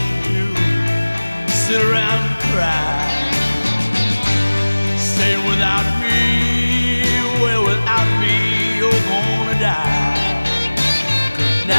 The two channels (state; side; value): inverted; both; correlation -1.00